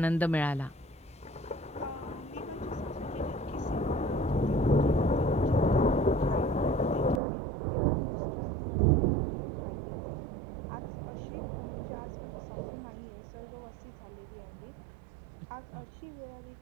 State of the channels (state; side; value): drops out; left; at 7.2 s